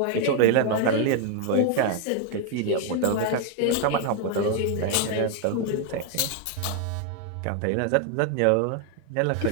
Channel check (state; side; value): different; both; correlation 0.00